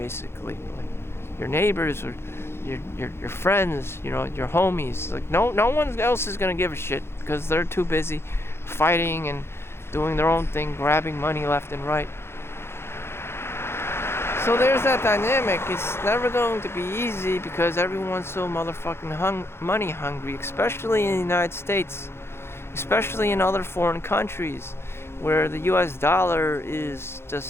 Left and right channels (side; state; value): right; late; 0.12 ms